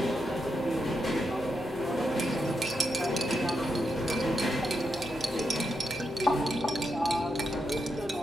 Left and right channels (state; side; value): normal; both; correlation 0.84